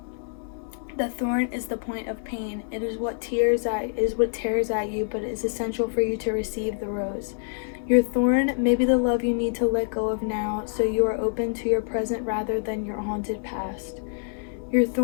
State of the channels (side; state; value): right; silent; digital silence